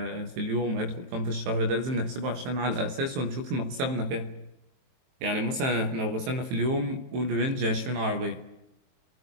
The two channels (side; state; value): left; late; 23 ms